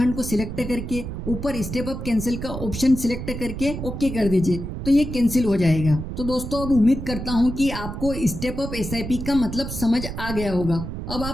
को सिलेक्ट करके ऊपर स्टेप अप कैंसिल का ऑप्शन सिलेक्ट करके ओके कर दीजिए तो ये कैंसिल हो जाएगा। तो दोस्तों अब उम्मीद करता हूँ कि आपको स्टेप अप एसआईपी का मतलब समझ आ गया होगा। अब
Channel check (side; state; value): right; noise; rumble, 7 dB below the sound